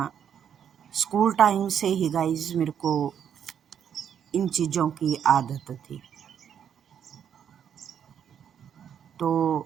स्कूल टाइम से ही गाइस मेरे को इन चीज़ों की आदत थी।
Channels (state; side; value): quieter; left; 8.6 dB